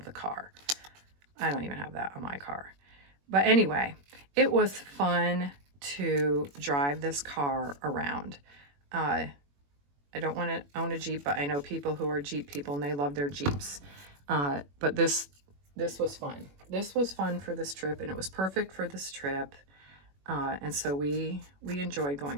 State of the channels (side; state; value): left; late; 21 ms